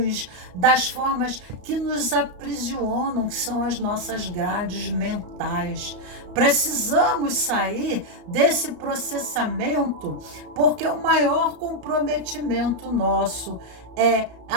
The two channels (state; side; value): late; left; 34 ms